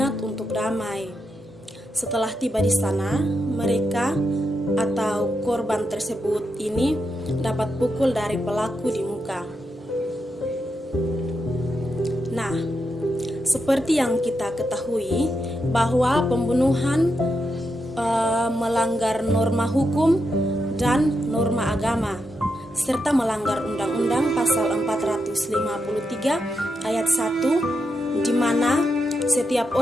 untuk damai. Setelah tiba di sana, mereka atau korban tersebut ini dapat pukul dari pelaku di muka. Nah, seperti yang kita ketahui bahwa pembunuhan melanggar norma hukum dan norma agama, serta melanggar Undang-Undang Pasal 453 Ayat 1, di mana setiap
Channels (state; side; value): normal; both; correlation 0.84